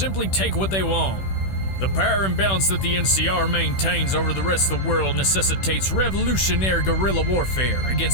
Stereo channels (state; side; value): late; right; 16 ms